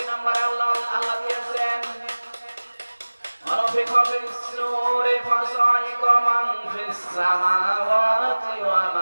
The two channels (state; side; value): inverted; both; correlation -1.00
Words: নম্বরে আল্লাহ দিয়েছেন ونفخ في الصور فصعق من في السماوات